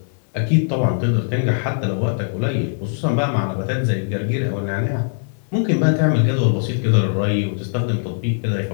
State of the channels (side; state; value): right; silent; digital silence